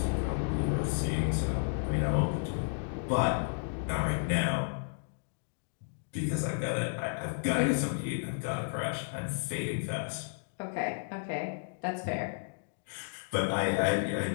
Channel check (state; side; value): silent; right; digital silence